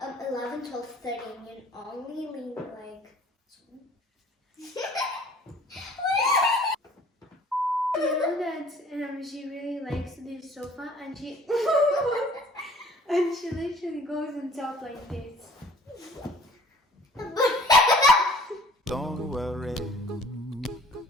11, 12, 13. You only leave You know that she really likes this sofa, and she and she literally goes on top like this. Don't worry,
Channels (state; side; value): normal; both; correlation 0.53